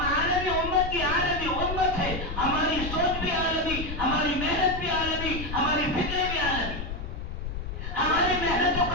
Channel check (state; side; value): noise; left; rumble, 7 dB below the sound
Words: عالمی امت کی عالمی امت ہے، ہماری سوچ بھی عالمی، ہماری محنت بھی عالمی، ہماری فکریں بھی عالمی، ہماری محنتوں